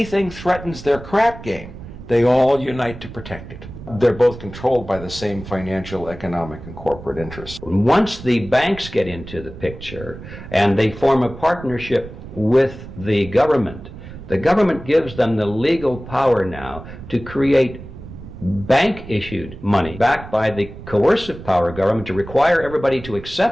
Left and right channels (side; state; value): right; noise; rumble, 14 dB below the sound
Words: threatens their crap game, they all unite to protect it. They're both controlled by the same financial, economic, and corporate interests. Once the banks get into the picture and they form a partnership with the government gives them the legal power now to create bank-issued money backed by the coercive power of government to require everybody to